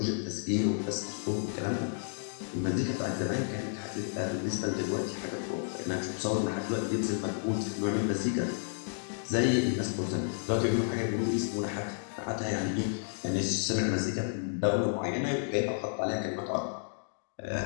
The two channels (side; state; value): right; silent; digital silence